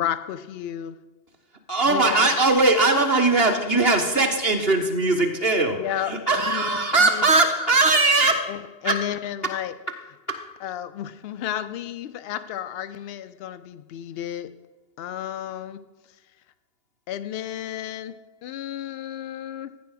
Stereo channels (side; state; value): right; late; 2.8 ms